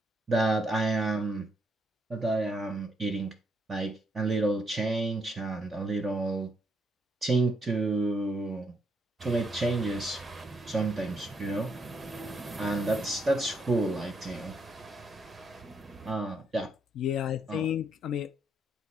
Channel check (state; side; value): normal; both; correlation 0.74